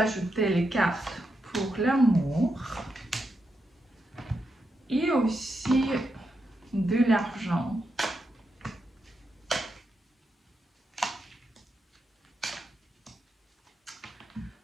les cartes pour l'amour et aussi de l'argent.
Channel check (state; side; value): normal; both; correlation 0.84